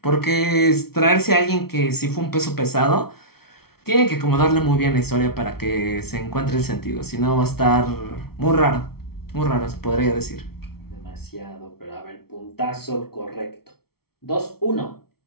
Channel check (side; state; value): right; late; 0.95 ms